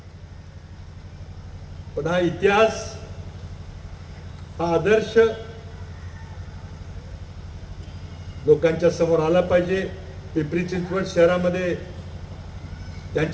पण हा इतिहास, हा आदर्श लोकांच्या समोर आला पाहिजे. पिंपरी चिंचवड शहरामध्ये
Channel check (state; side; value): identical; both; correlation 1.00